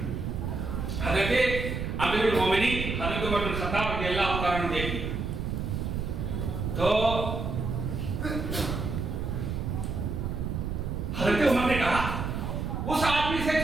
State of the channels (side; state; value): right; noise; rumble, 3 dB below the sound